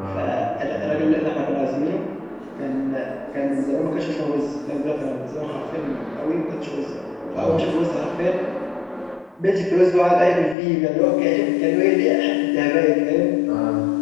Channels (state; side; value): drops out; right; at 10.6 s